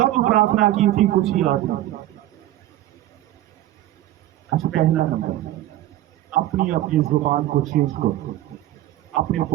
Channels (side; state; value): left; quieter; 14.2 dB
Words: प्रार्थना की थी कुछ ही याद नहीं। अच्छा, पहला नंबर, अपनी अपनी जुबान को चेंज करो, अपने